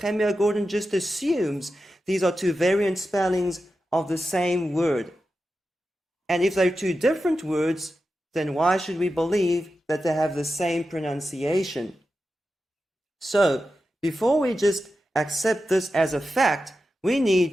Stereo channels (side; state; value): both; normal; correlation 0.91